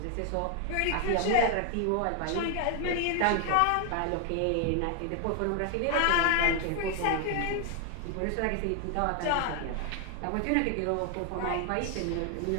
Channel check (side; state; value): both; different; correlation 0.00